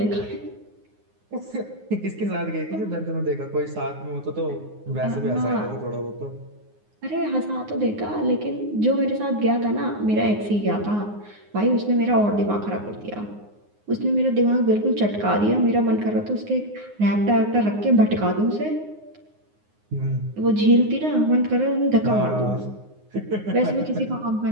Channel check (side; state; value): left; late; 9.6 ms